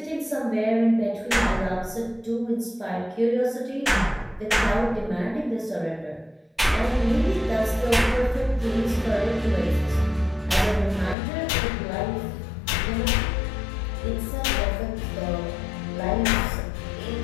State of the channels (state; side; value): drops out; right; at 11.2 s